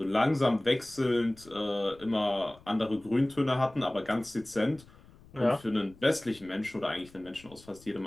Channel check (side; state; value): left; noise; rumble, 24 dB below the sound